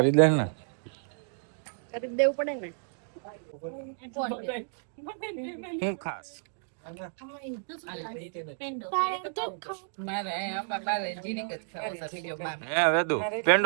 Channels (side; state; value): left; silent; digital silence